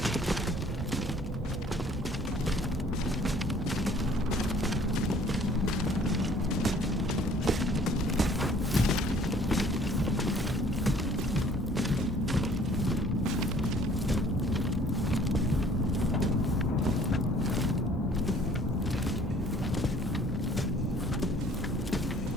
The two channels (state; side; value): normal; both; correlation 0.55